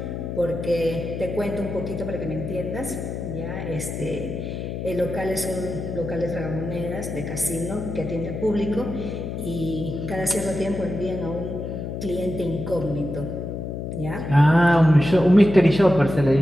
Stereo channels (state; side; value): noise; left; hum, 5 dB below the sound